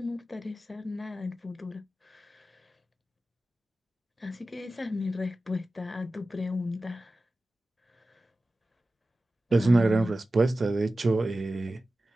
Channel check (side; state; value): both; normal; correlation 0.95